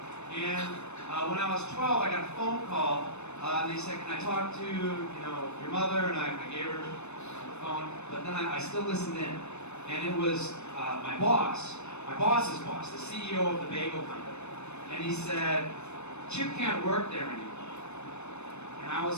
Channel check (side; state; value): right; late; 0.81 ms